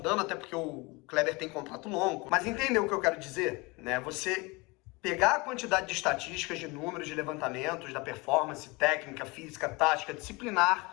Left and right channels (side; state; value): right; quieter; 25.6 dB